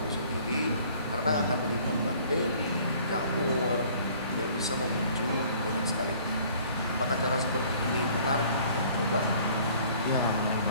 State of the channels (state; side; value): inverted; both; correlation -0.55